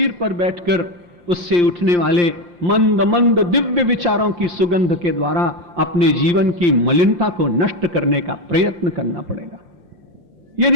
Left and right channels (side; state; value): left; late; 5.7 ms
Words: पर बैठकर उससे उठने वाले मंद मंद दिव्य विचारों की सुगंध के द्वारा अपने जीवन की मलिनता को नष्ट करने का प्रयत्न करना पड़ेगा।